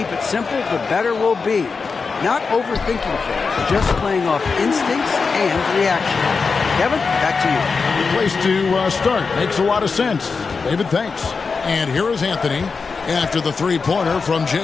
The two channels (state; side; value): quieter; right; 4.8 dB